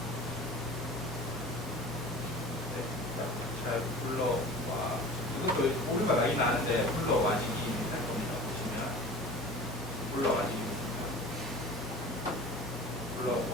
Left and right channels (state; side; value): normal; both; correlation 0.39